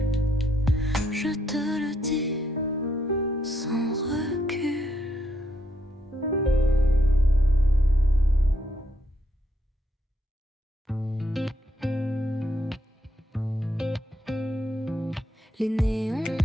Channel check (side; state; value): both; normal; correlation 0.76